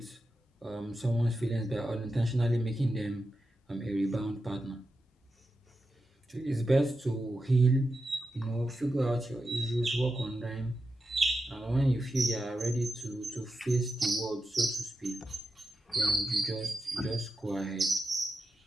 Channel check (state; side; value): normal; both; correlation 0.89